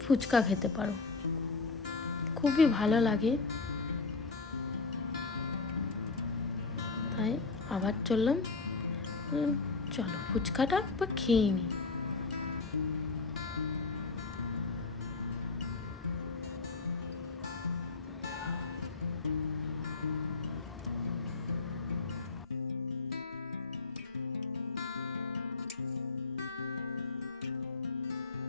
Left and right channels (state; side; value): quieter; right; 4.0 dB